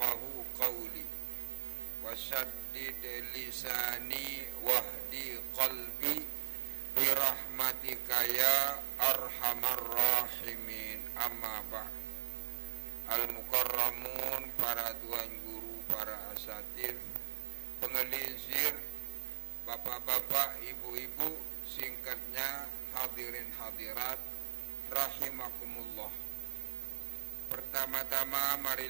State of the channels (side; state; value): left; silent; 52 dB below the other